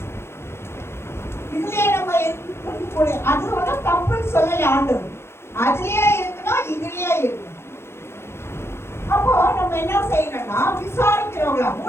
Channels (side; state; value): right; late; 0.12 ms